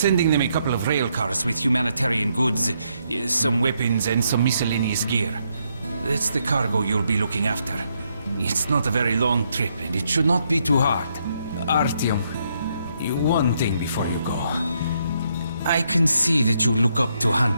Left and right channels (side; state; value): both; inverted; correlation -0.76